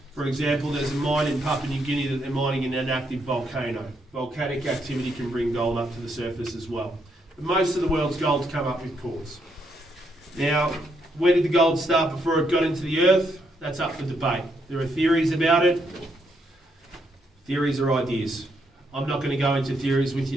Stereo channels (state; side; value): normal; both; correlation 0.76